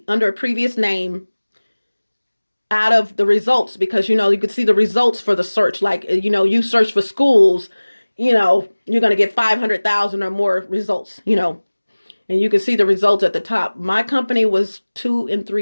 under a previous name out of the results because, you could see the results for the search. Like, you search for schools, you're going to get 500,000 or more results, and you can see the results at the top. My company was 2 and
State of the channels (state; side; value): inverted; both; correlation -1.00